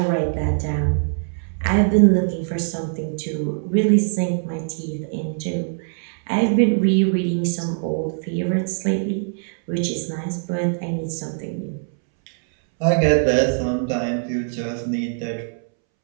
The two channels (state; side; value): silent; left; 64 dB below the other